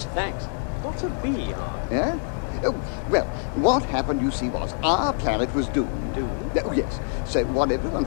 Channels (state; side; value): silent; right; 62 dB below the other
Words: Thanks. What's a B Ark? Yeah? Oh, well, what happened, you see, was our planet was doomed. Doomed? Oh, yes. So what everyone